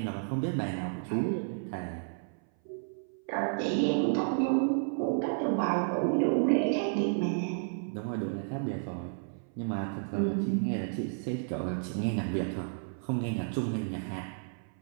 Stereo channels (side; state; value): left; silent; 57 dB below the other